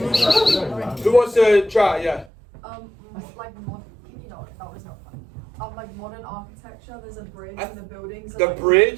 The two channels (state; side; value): drops out; left; at 2.3 s